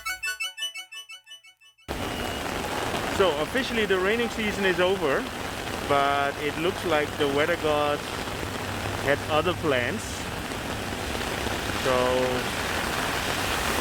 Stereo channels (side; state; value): both; identical; correlation 1.00